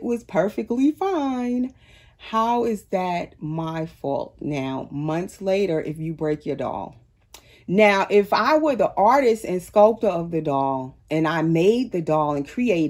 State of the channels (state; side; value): identical; both; correlation 1.00